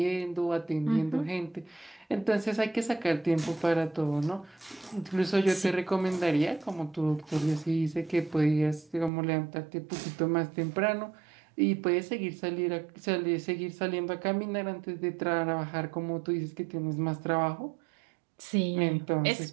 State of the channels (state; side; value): drops out; left; at 9.1 s